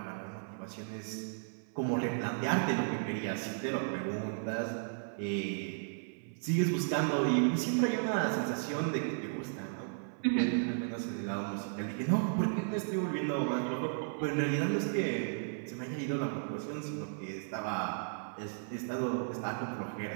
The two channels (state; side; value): silent; left; 55 dB below the other